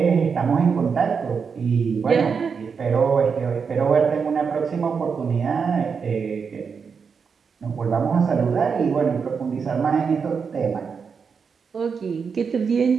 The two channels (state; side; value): quieter; left; 5.9 dB